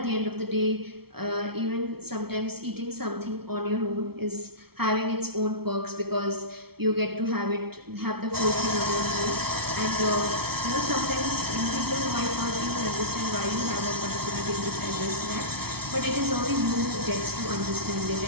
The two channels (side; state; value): left; late; 0.95 ms